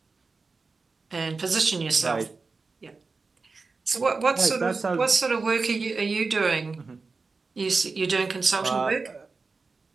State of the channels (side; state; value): left; quieter; 4.2 dB